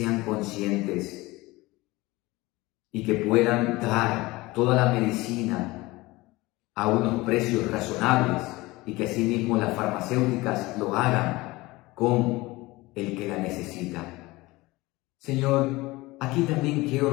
conscientes y que puedan dar toda la medicina a unos precios razonables, y que asimismo las farmacéuticas lo hagan con el que la necesita. Señor, aquí también quiero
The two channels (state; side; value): quieter; right; 20.9 dB